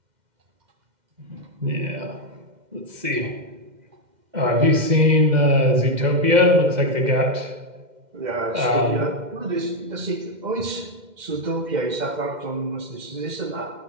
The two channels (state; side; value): late; left; 2.1 ms